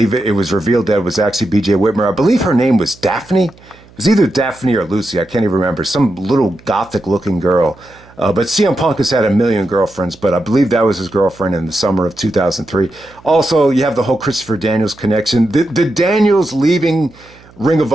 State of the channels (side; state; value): right; noise; hum, 26 dB below the sound